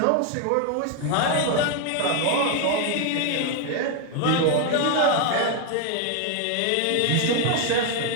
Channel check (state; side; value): different; both; correlation 0.01